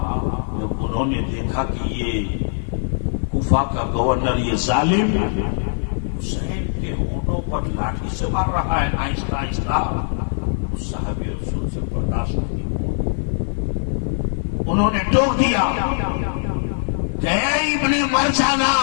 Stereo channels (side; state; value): right; silent; 55 dB below the other